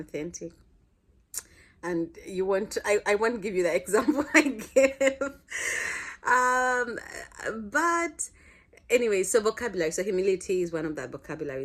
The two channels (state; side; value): identical; both; correlation 1.00